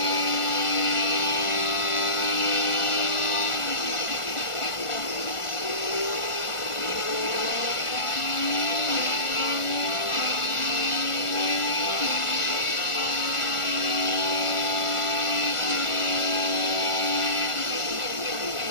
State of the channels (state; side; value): late; right; 1.4 ms